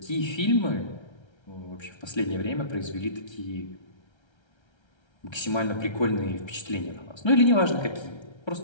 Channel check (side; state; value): right; late; 1.3 ms